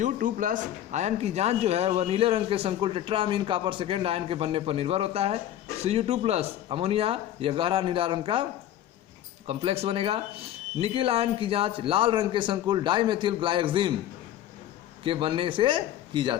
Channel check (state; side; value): quieter; right; 12.0 dB